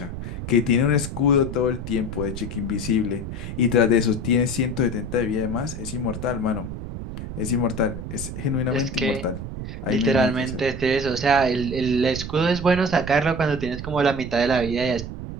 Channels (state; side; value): noise; right; rumble, 8 dB below the sound